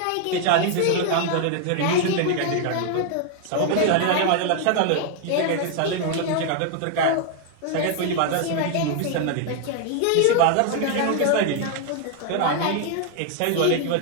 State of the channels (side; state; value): both; different; correlation 0.00